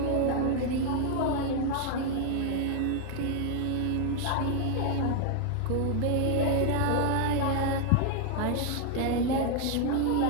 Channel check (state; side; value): different; both; correlation 0.00